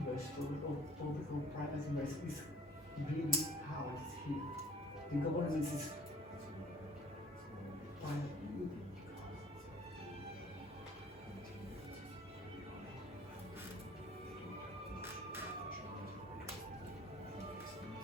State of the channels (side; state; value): both; normal; correlation 0.52